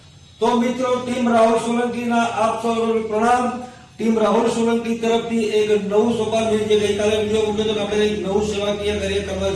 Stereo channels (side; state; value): both; identical; correlation 1.00